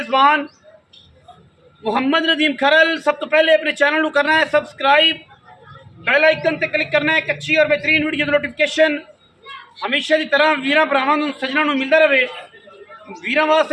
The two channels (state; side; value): identical; both; correlation 1.00